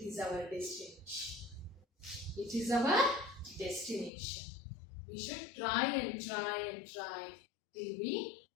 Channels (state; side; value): drops out; right; at 4.1 s